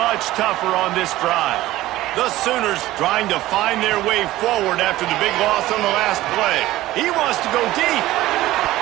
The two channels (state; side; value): quieter; left; 16.2 dB